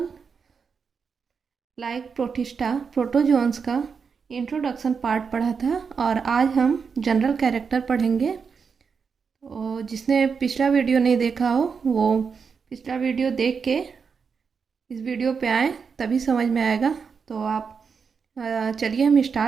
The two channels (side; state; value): left; quieter; 5.8 dB